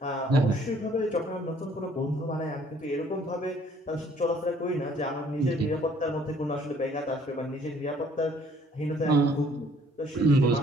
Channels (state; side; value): normal; both; correlation 0.60